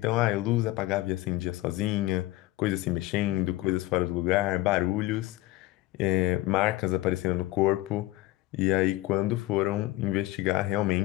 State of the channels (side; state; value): right; quieter; 17.8 dB